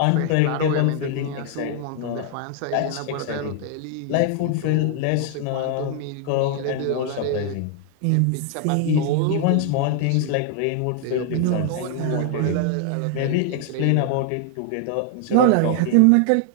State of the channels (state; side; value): different; both; correlation 0.00